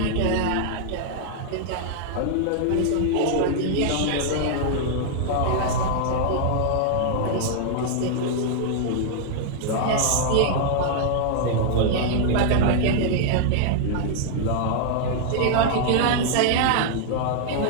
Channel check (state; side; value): different; both; correlation -0.01